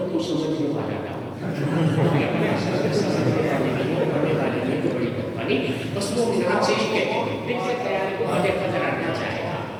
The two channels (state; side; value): identical; both; correlation 1.00